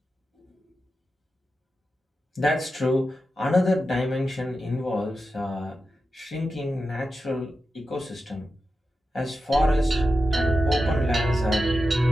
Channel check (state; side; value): normal; both; correlation 0.91